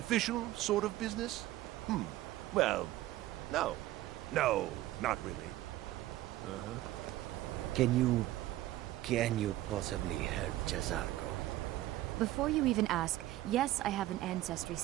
sort of business? Well, no. No, not really. Can you possibly help Jazargo? Before you even ask, yes, I have an ancestry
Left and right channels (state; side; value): quieter; left; 15.5 dB